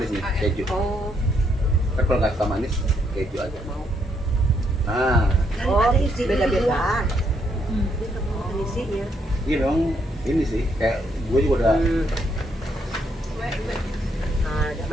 nih, keju. Oh, Kan kalau nggak suka manis, keju aja mau. Nah, oh, beda-beda. Hmm. Ini isinya. ini memang ini sih kayak gue juga udah Nah, ada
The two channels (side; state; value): both; normal; correlation 0.74